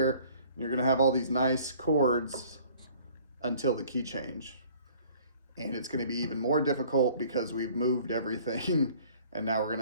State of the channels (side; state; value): both; inverted; correlation -0.53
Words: and you're going to have all these nice chords until the key change. And it's going to be even more difficult because we've moved everything and now we're going